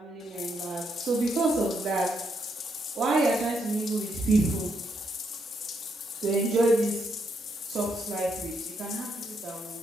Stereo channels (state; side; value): normal; both; correlation 0.77